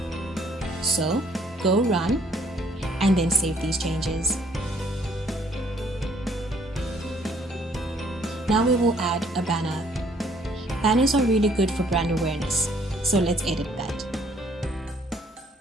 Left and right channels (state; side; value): normal; both; correlation 0.64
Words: So, go run, and then save these changes. Now we will add a banner. Banners are really good for brand awareness, so let's edit that.